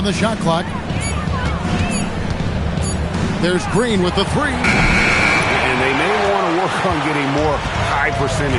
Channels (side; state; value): both; identical; correlation 1.00